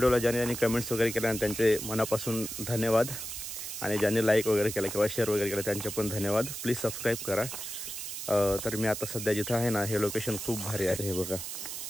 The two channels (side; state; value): right; noise; hiss, 7 dB below the sound